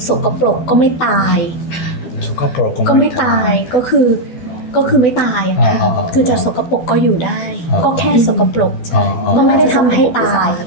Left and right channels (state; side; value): late; right; 12 ms